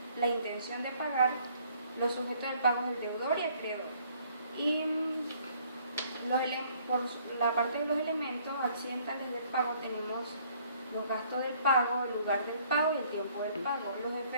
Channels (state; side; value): inverted; both; correlation -0.62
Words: la intención de pagar, los sujetos del pago es el deudor y acreedor. Y por la parte de los elementos accidentales del pago tenemos los gastos del pago, el lugar del pago y el tiempo del pago. Los